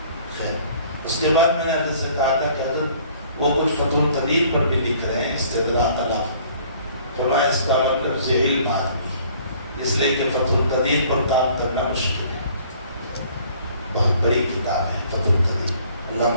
خیر اس کے بعد میں نے حضرت سے کہا تھا کہ حضرت وہ کچھ فتح القدیر پر بھی لکھ رہے ہیں استدراک علی. فرمایا اس کا مطلب ذہیل آدمی ہے، اس لیے کہ فتح القدیر پر کام کرنا مشکل ہے. بہت بڑی کتاب ہے فتح القدیر.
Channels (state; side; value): inverted; both; correlation -0.55